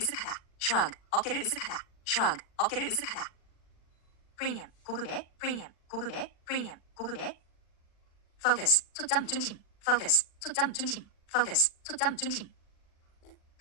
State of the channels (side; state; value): right; late; 40 ms